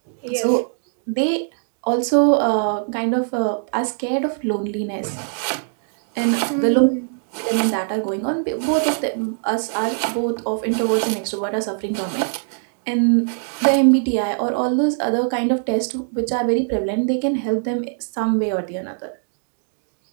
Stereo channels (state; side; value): silent; left; digital silence